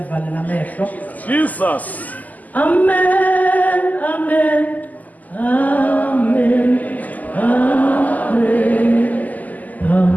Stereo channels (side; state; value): right; late; 0.080 ms